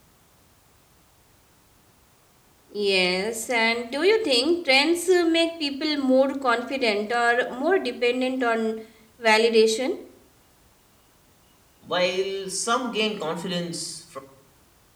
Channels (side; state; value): both; identical; correlation 1.00